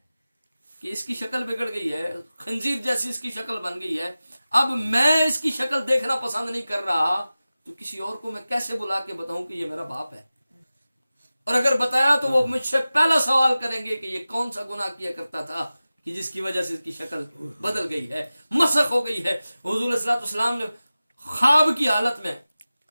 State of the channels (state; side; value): inverted; both; correlation -0.96